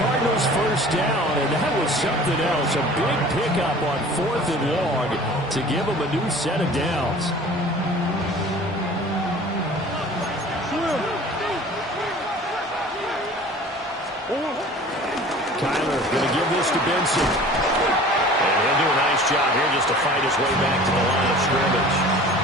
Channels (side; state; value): both; normal; correlation 0.44